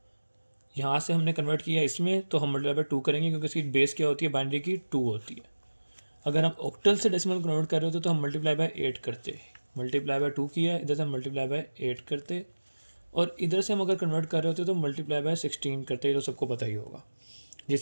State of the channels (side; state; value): both; inverted; correlation -1.00